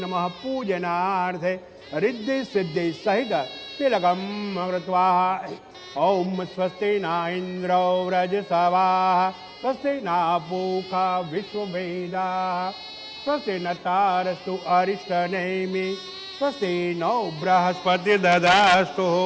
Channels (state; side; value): identical; both; correlation 1.00